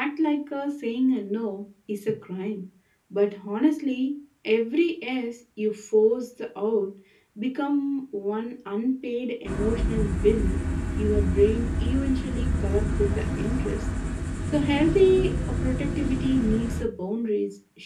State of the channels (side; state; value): both; identical; correlation 1.00